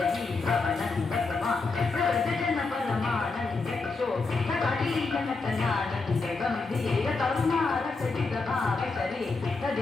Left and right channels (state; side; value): quieter; right; 4.0 dB